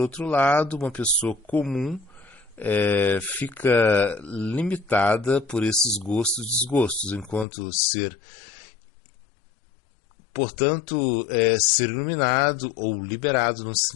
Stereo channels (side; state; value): right; drops out; at 7.5 s